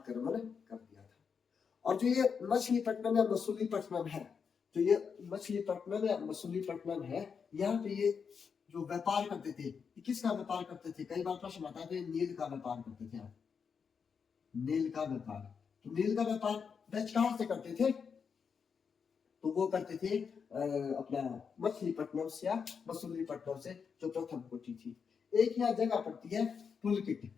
कर दिया था। और जो ये मछलीपट्टनम या मसूलीपट्टनम है, तो ये मछलीपट्टनम या मसूलीपट्टनम है, यहाँ पे ये जो व्यापार करते थे, किसका व्यापार करते थे, कई बार प्रश्न आता है, तो ये नील का व्यापार करते थे, नील का व्यापार। तो नील का व्यापार डच कहां से करते थे, तो वो करते थे अपना मछलीपट्टनम से या मसूलीपट्टनम से, जो प्रथम कोठी थी। एक यहाँ जगह पड़ती है पुलकिट,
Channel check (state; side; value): quieter; right; 6.2 dB